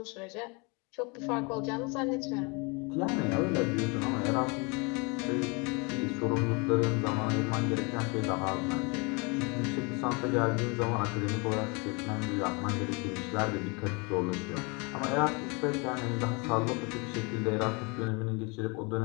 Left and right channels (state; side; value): quieter; right; 30.1 dB